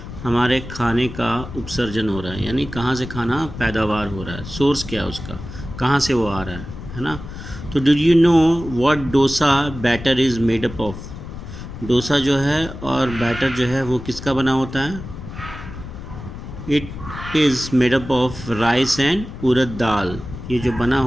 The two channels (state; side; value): noise; left; rumble, 11 dB below the sound